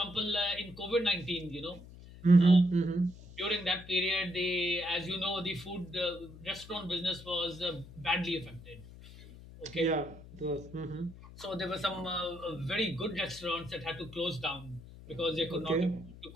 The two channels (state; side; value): noise; left; hum, 17 dB below the sound